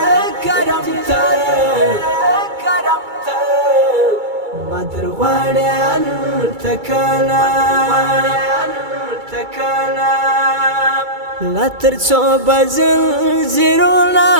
کرم ته کرم ته مدرواړې هلته کله لا تر څو بزلزلونه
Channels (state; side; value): late; left; 2.3 ms